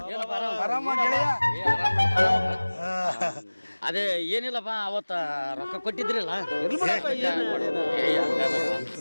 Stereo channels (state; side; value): inverted; both; correlation -1.00